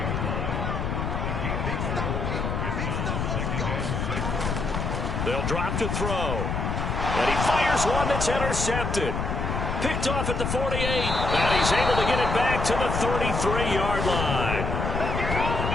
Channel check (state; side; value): noise; left; rumble, 1 dB below the sound